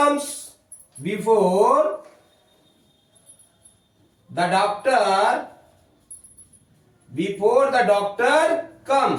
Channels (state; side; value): identical; both; correlation 1.00